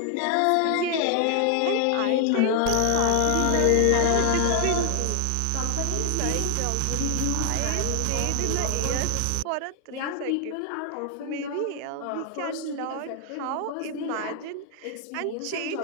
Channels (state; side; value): different; both; correlation 0.00